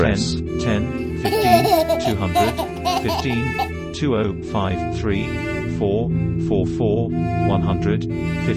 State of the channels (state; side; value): identical; both; correlation 1.00